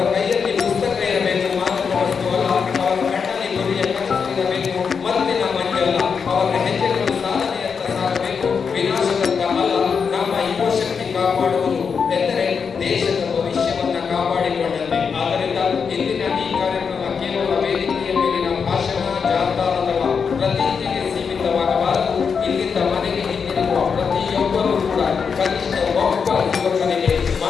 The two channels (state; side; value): quieter; right; 6.0 dB